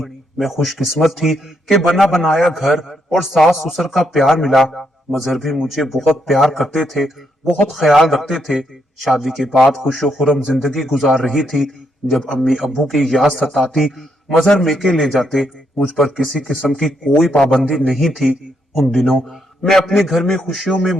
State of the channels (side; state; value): both; normal; correlation 0.77